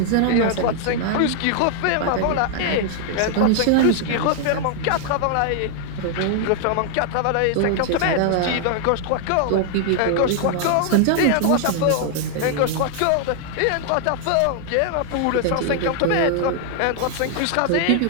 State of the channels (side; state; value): both; different; correlation 0.00